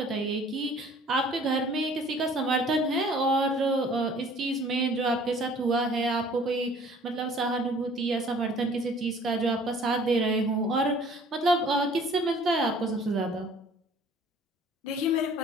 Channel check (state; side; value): normal; both; correlation 0.53